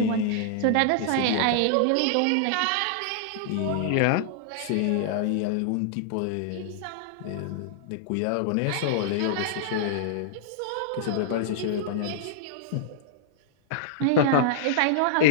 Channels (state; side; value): different; both; correlation -0.01